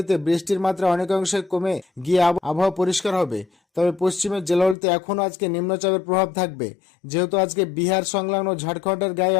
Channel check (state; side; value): drops out; right; at 4.8 s